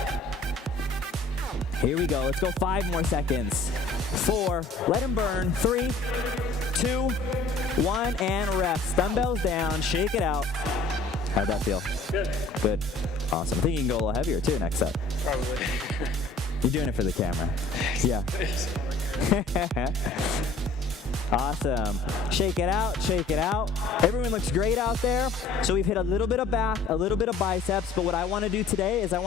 Here we go. Let's go 5 more seconds. 4, let them burn. 3, 2, 1, and rest. Dumbbells down, shake it out. How'd that feel? Good. Good. Awesome. I think you can go a little heavier too next set. Probably. You're doing it for the camera. Yeah. Awesome. Shake it out, shake it out. Everyone looks great out there. So we've hit a little bit of back, a little bit of biceps, but what I want to do today is I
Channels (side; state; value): right; quieter; 3.5 dB